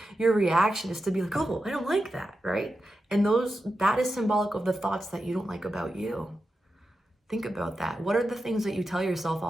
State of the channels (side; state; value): both; normal; correlation 0.90